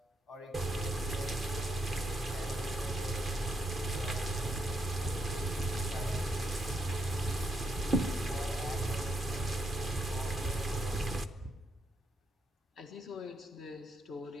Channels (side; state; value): both; normal; correlation 0.80